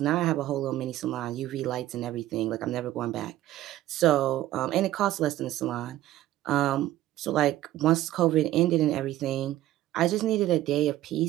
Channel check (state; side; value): quieter; left; 14.5 dB